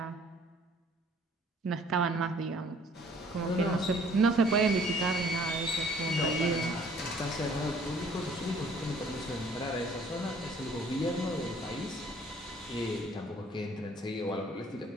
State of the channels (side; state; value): both; normal; correlation 0.57